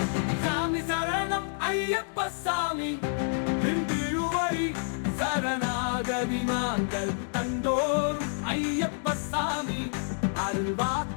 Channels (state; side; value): silent; right; digital silence